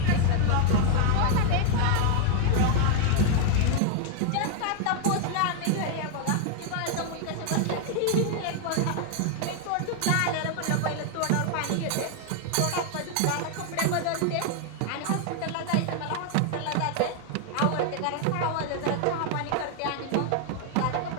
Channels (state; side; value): different; both; correlation 0.00